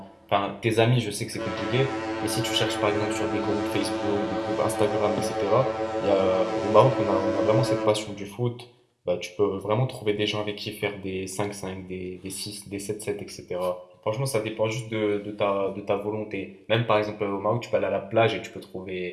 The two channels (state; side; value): identical; both; correlation 1.00